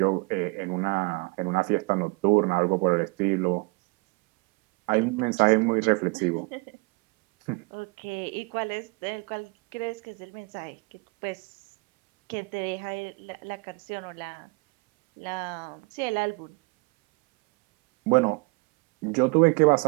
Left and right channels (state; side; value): quieter; left; 28.5 dB